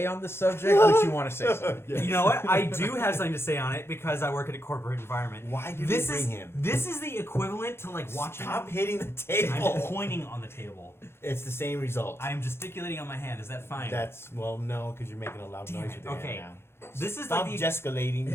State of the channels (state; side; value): late; right; 0.12 ms